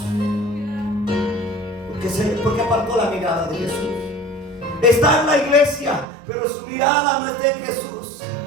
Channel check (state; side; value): drops out; left; at 6.1 s